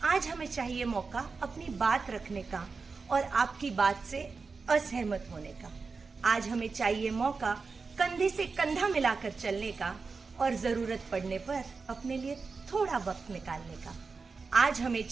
आज हमें चाहिए मौका अपनी बात रखने का और आपकी बात से असहमत होने का. आज हमें चाहिए मौका कंधे से कंधा मिलाकर चलने का और जरूरत पड़ने पर अपने लिए थोड़ा वक्त निकालने का. आज हमें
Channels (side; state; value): left; quieter; 4.6 dB